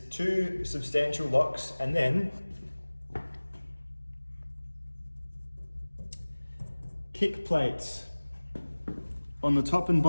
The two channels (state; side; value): inverted; both; correlation -1.00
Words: 2 substantial locks, and then kick plates on the top and